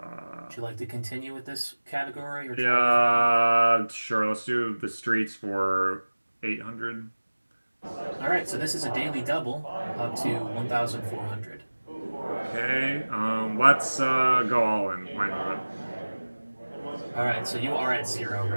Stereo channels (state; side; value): inverted; both; correlation -1.00